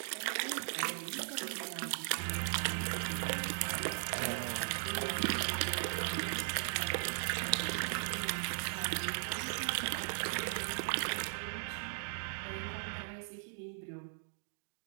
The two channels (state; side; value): silent; left; digital silence